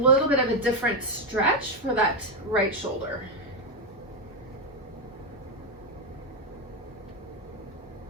bit of a different stretch for that right shoulder.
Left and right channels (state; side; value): normal; both; correlation 0.07